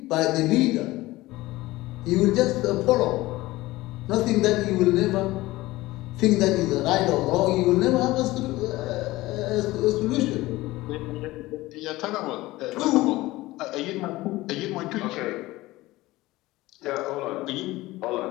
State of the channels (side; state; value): right; quieter; 18.7 dB